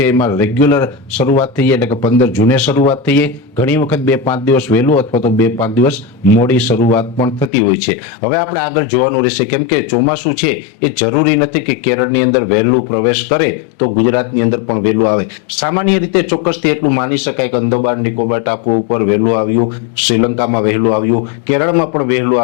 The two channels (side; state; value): right; drops out; at 7.5 s